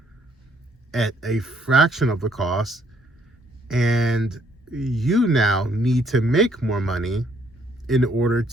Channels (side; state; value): both; normal; correlation 0.67